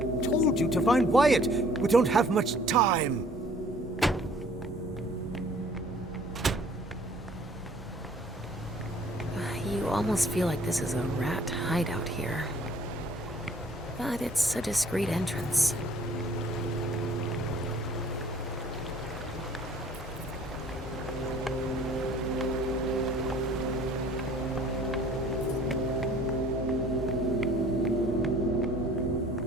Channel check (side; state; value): both; normal; correlation 0.54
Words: told you to find Wyatt. We don't have much time. You almost feel like this is a rat hideout here. But it's a discreet entrance.